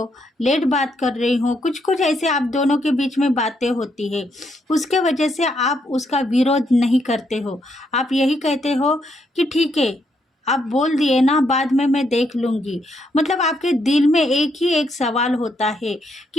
लेट बात कर रही हो, कुछ कुछ ऐसे आप दोनों के बीच में बातें होती है। उसके वजह से आप उसका विरोध नहीं करते हो। आप यही कहते हो कि ठीक है, आप बोल दिए ना, बाद में मैं देख लूँगी। मतलब आपके दिल में एक ही एक सवाल होता है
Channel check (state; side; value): normal; both; correlation 0.76